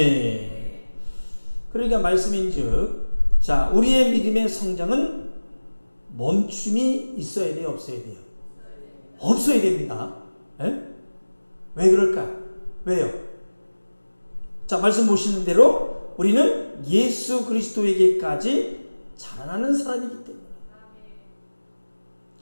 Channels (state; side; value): inverted; both; correlation -1.00